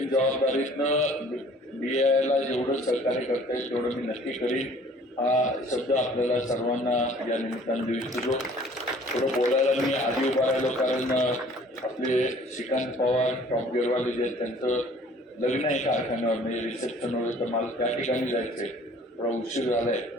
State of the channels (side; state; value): both; normal; correlation 0.53